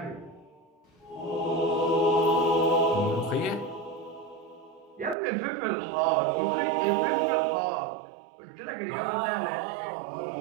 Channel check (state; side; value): drops out; left; at 5.2 s